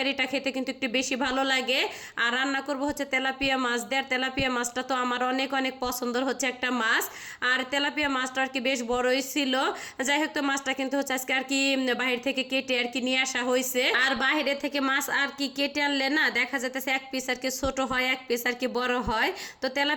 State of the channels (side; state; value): both; identical; correlation 1.00